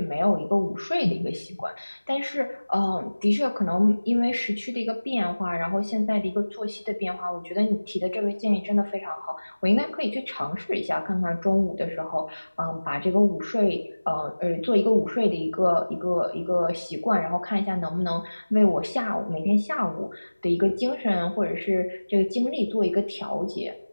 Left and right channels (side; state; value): both; inverted; correlation -1.00